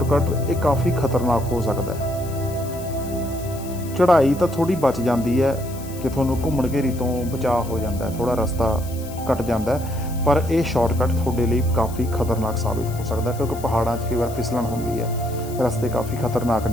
ये काफ़ी खतरनाक हो सकता है। चढ़ाई तो थोड़ी बच जाती है कि थोनों घूमण घेरी तो बचाव हो जाता है, थोड़ा रास्ता कट जाता है, पर यह शॉर्टकट थोड़े लिए काफ़ी खतरनाक साबित हो सकता है, क्योंकि पहाड़ों कई बार फिसलन होंदी है, रस्ते काफ़ी खतरनाक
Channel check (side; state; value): left; noise; hiss, 17 dB below the sound